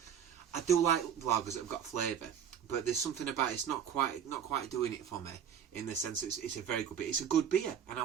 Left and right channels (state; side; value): quieter; left; 8.5 dB